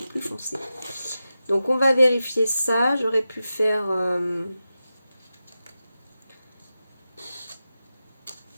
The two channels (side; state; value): both; inverted; correlation -0.92